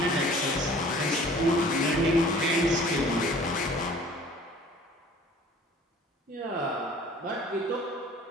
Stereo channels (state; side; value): normal; both; correlation 0.49